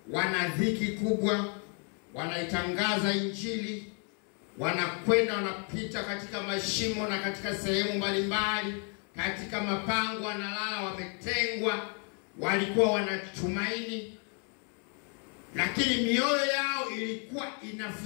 wana dhiki kubwa, wanaitangaza injili, wanakwenda wanapita katika mashimo na katika sehemu mbalimbali, katika mapango wanalala, wametengwa. Walikuwa wanatumaini, lakini mioyo yao ilikuwa ina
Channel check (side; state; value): right; quieter; 39.5 dB